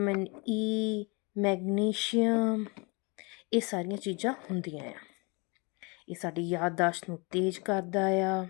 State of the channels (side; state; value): right; quieter; 29.5 dB